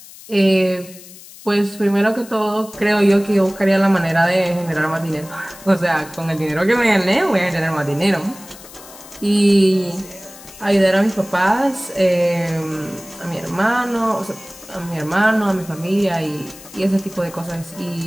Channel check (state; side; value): noise; left; hiss, 19 dB below the sound